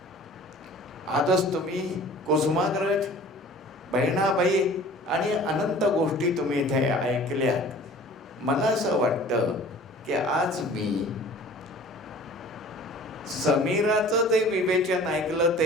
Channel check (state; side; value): normal; both; correlation 0.46